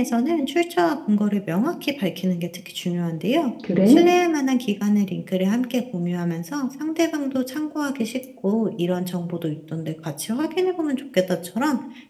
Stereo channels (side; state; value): both; identical; correlation 1.00